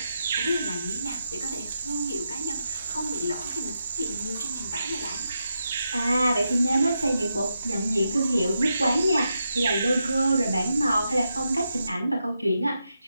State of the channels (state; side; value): inverted; both; correlation -0.85